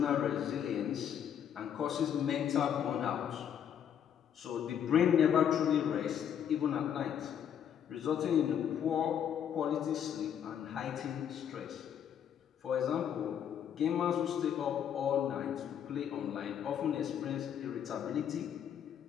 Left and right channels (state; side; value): quieter; right; 9.0 dB